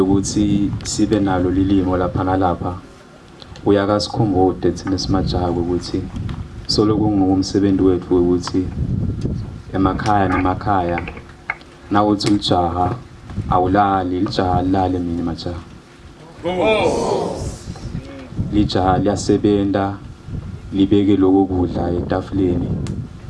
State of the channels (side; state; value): both; identical; correlation 1.00